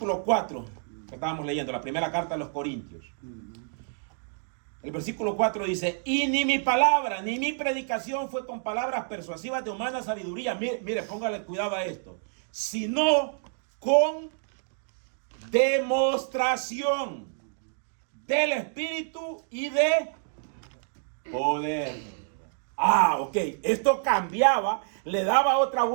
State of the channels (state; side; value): silent; left; digital silence